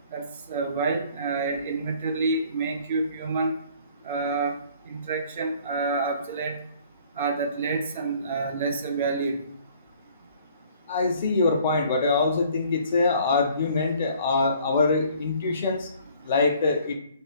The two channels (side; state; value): both; inverted; correlation -0.56